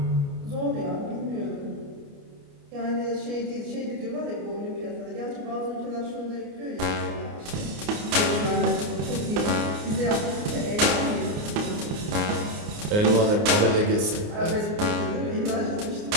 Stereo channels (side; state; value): left; late; 29 ms